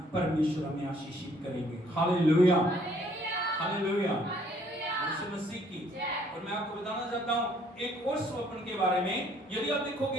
परमेश्वर हमें आशीषित करेंगे। हालेलुया, हालेलुया, यीशु मसीह की। और मैं आपको बताना चाहता हूं एक और स्वप्न के बारे में। यदि आप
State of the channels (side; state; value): both; normal; correlation 0.63